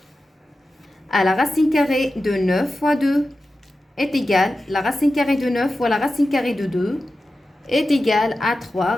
à la racine carrée de 9 fois 2 est égale, la racine carrée de 9 fois la racine carrée de 2 est égale à 3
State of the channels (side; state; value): both; normal; correlation 0.93